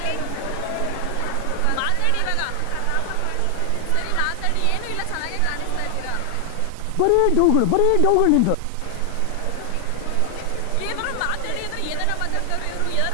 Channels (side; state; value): both; different; correlation 0.00